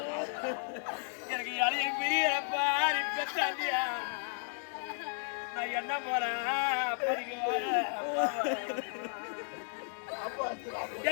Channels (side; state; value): right; silent; 55 dB below the other